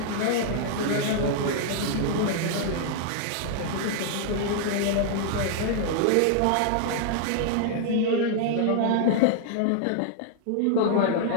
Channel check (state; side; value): different; both; correlation -0.01